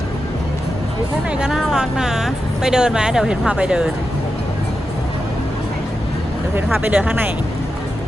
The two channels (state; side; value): normal; both; correlation 0.89